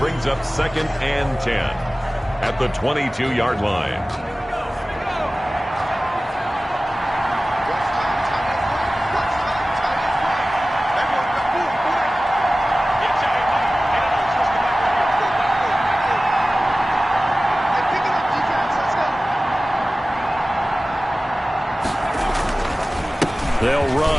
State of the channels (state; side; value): normal; both; correlation 0.97